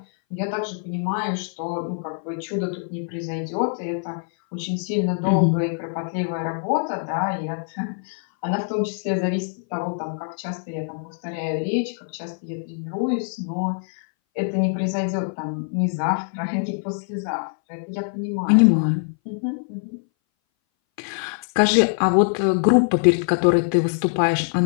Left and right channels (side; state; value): right; silent; 60 dB below the other